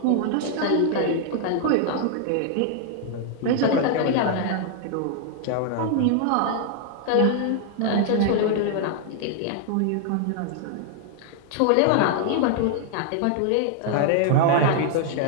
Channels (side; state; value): both; different; correlation 0.00